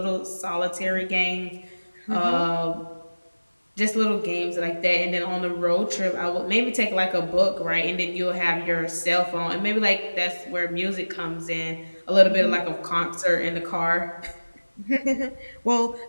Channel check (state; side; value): inverted; both; correlation -1.00